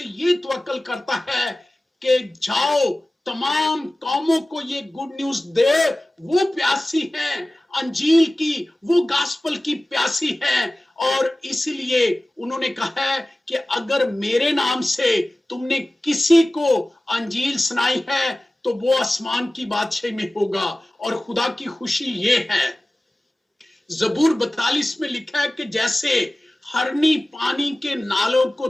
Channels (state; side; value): normal; both; correlation 0.97